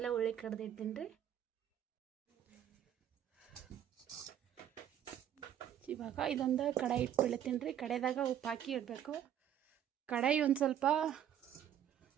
ಉಳ್ಳಿ ಕಡ್ದಿಡ್ತೀನಿ ರೀ. ಇವಾಗ ಇದೊಂದು ಕಡಾಯಿ ಇಟ್ಬಿಡ್ತೀನಿ ರೀ. ಕಡಾಯಿದಾಗ ಉಪ್ಪು ಹಾಕಿ ಇಡಬೇಕು. ಕಡಾಯಿ ಒಂದು ಸ್ವಲ್ಪ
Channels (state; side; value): quieter; left; 10.1 dB